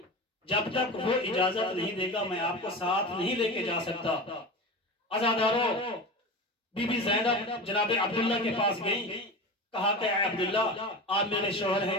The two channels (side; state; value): both; normal; correlation 0.28